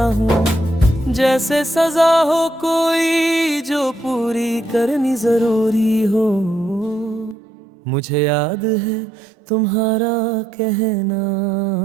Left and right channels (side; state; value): left; drops out; at 7.4 s